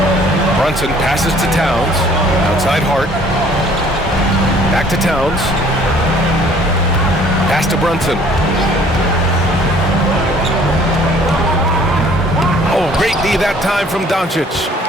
Brunson passes to Towns. Outside Hart. Back to Towns. Pass to Brunson. Oh, great knee that time from Doncic.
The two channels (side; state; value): both; normal; correlation 0.56